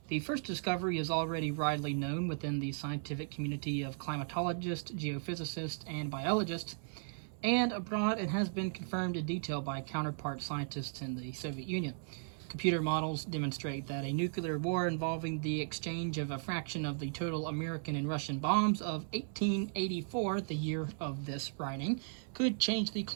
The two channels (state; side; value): silent; left; 54 dB below the other